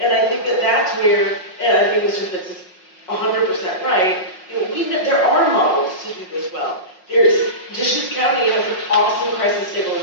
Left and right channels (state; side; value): late; right; 5.5 ms